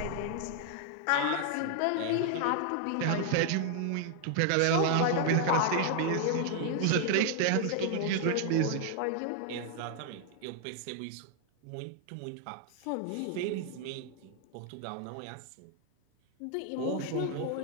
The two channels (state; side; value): different; both; correlation 0.00